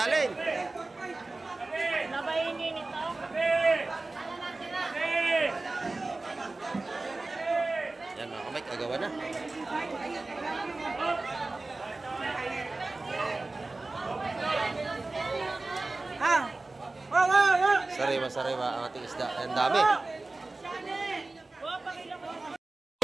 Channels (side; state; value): left; quieter; 3.2 dB